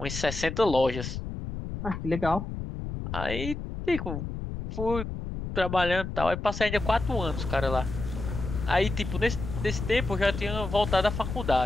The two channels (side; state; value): left; noise; rumble, 6 dB below the sound